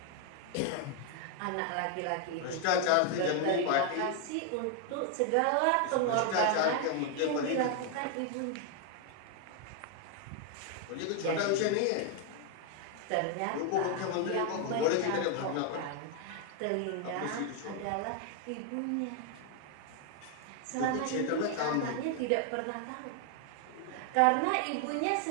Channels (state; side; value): different; both; correlation 0.00